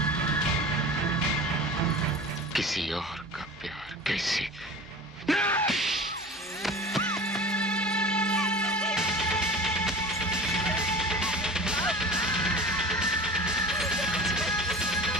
किसी और का प्यार कैसे?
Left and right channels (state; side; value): normal; both; correlation 0.38